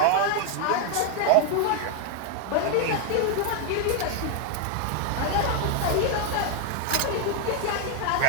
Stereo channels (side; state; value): both; different; correlation 0.01